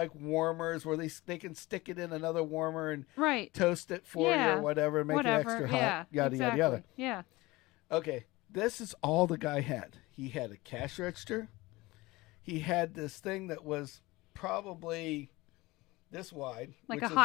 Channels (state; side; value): quieter; right; 21.0 dB